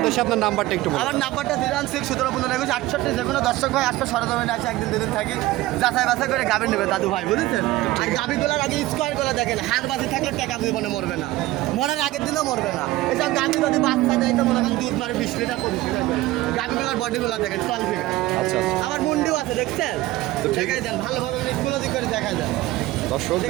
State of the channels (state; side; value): quieter; left; 17.4 dB